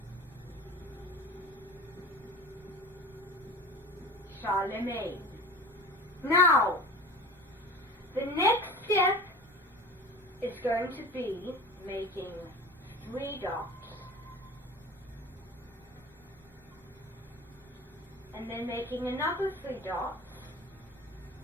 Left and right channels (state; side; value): normal; both; correlation 0.36